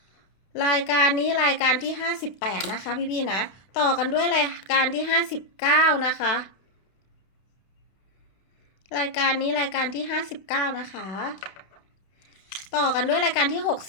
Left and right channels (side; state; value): right; late; 32 ms